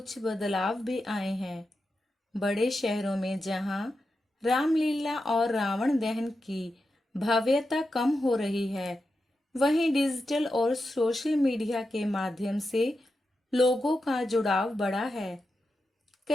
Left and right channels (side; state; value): both; normal; correlation 0.89